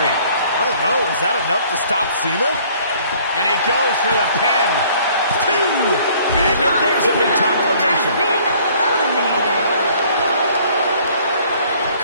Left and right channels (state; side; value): inverted; both; correlation -0.57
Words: I don't know. Is that enough to stop Cena? And he goes for the pin. 2. And there's a big-time elimination. Been eliminated.